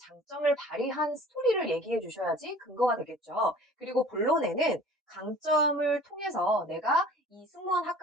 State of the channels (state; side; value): normal; both; correlation 0.46